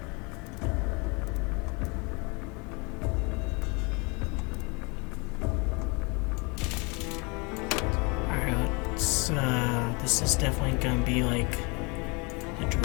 This is definitely gonna be like the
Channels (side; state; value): right; quieter; 29.7 dB